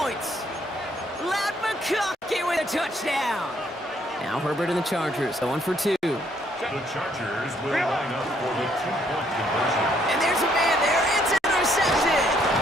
Ladd McConkey with a touchdown. Now Herbert and the Chargers going for 2. The Chargers will line up for the 2-point conversion. And there's a man there. It's intercepted.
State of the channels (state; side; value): normal; both; correlation 0.68